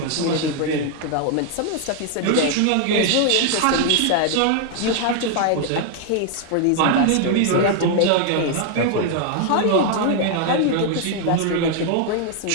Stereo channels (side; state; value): both; different; correlation 0.00